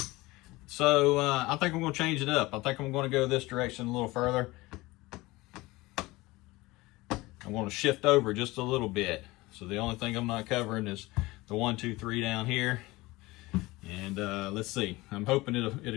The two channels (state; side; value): quieter; right; 20.7 dB